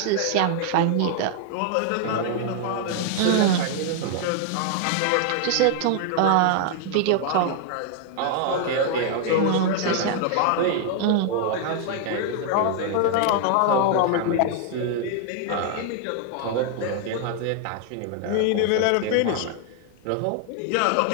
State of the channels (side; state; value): both; different; correlation 0.00